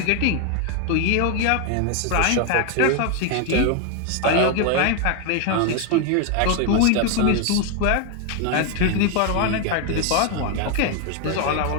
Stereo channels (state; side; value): different; both; correlation 0.01